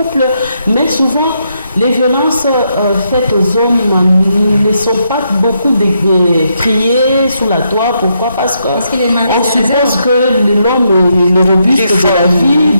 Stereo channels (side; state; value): both; inverted; correlation -0.79